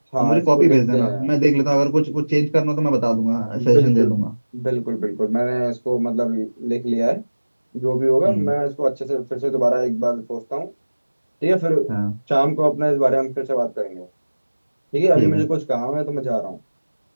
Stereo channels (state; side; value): inverted; both; correlation -1.00